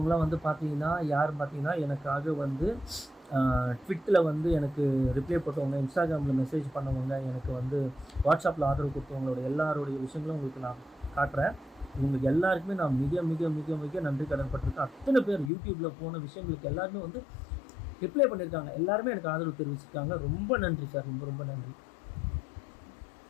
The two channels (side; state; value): right; drops out; at 15.5 s